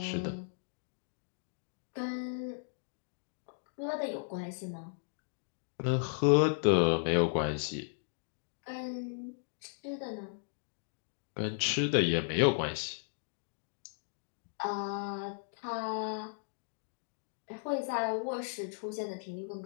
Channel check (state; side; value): silent; right; digital silence